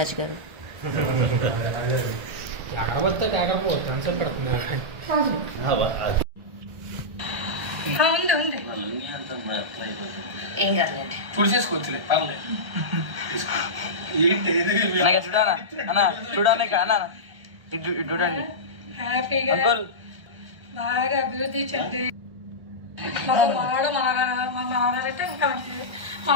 గారు. ఏం కాదులేండి, చూసేసుకోవచ్చులే పర్లేదు. చూడానా అన్న, చూడానే అన్న, ఇటు చూడండి. హ్యాపీగా బాగా అభివృద్ధి చెంది మనవాడు మనవాడంటే ఇంకా మంచిది.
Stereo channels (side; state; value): left; late; 1.3 ms